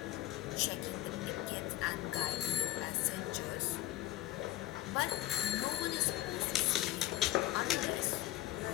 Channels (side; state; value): right; quieter; 14.8 dB